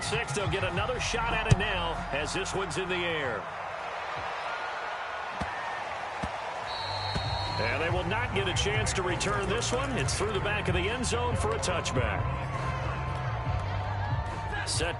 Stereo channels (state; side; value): identical; both; correlation 1.00